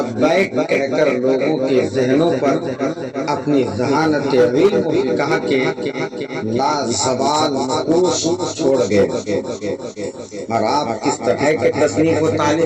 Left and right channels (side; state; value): both; identical; correlation 1.00